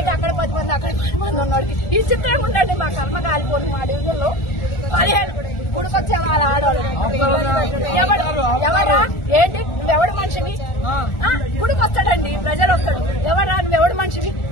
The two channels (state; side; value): late; right; 1.4 ms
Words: అక్కడ 10 మంది అక్కడ 10 మంది ఉన్నోడికి ఈ చిత్రం ఉండండి. మా కర్మ కాలిపోను. మా డివిజన్లో 15 గుడికొచ్చే వాళ్ళ ఆడవాళ్ళు ఎవరా ఏంటి నువ్వెవడు మనిషివి? గుడికొస్తాడండి, ప్రజలు వస్తాడు. ఎవరా నువ్వెవడు మనిషివి?